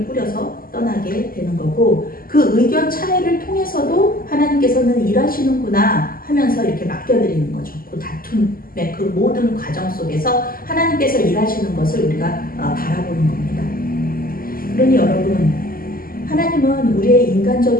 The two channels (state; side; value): late; right; 0.42 ms